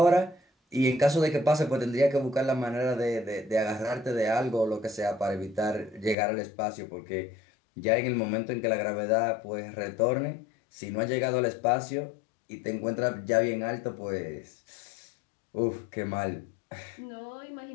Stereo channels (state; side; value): drops out; right; at 6.2 s